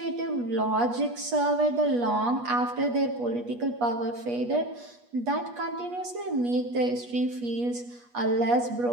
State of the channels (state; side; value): late; left; 8.3 ms